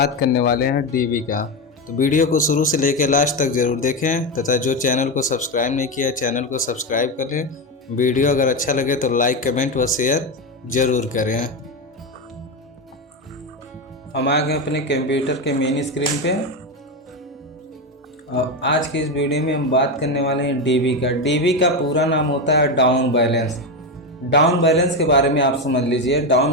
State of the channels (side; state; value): both; normal; correlation 0.13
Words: करने वाले हैं डीबी का। तो वीडियो को शुरू से लेकर लास्ट तक ज़रूर देखें तथा जो चैनल को सब्सक्राइब नहीं किया चैनल को सब्सक्राइब कर लें। वीडियो अगर अच्छा लगे तो लाइक कमेंट व शेयर ज़रूर करें। हम आ गए अपने कंप्यूटर के मेन स्क्रीन पे और आज की इस वीडियो में हम बात करने वाले हैं डीबी का। डीबी का पूरा नाम होता है डाउन बैलेंस। डाउन बैलेंस के बारे में आप समझ लीजिए।